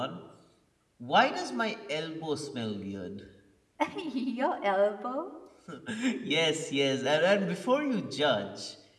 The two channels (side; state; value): both; identical; correlation 1.00